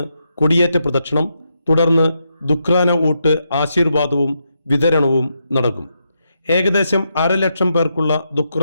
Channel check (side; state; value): both; inverted; correlation -0.82